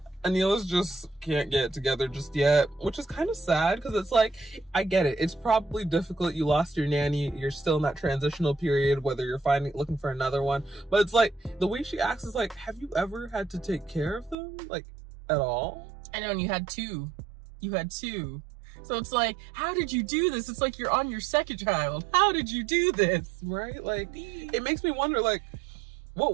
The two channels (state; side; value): drops out; left; at 14.4 s